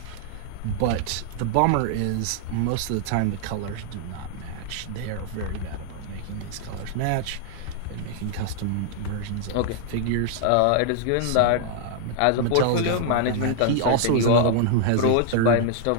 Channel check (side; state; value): both; different; correlation 0.00